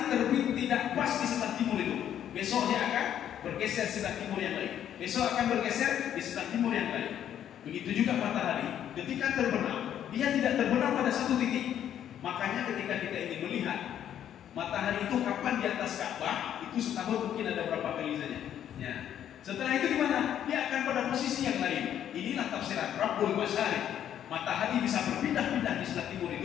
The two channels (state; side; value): quieter; right; 10.2 dB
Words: terbit tidak pas di sebelah timur itu. Besok dia akan bergeser sebelah timur yang lain. Besok akan bergeser di sebelah timur yang lain. Begitu juga matahari ketika terbenam, dia tidak terbenam pada satu titik. Makanya ketika kita ingin melihat matahari itu kapan di atas Ka'bah, itu setahun mungkin ada berapa kali saja. Ya. Setelah itu di mana? Dia akan pada posisi yang lain. Inilah tafsiran Rabbul Masyriq. Matahari bisa berpindah-pindah di sebelah timur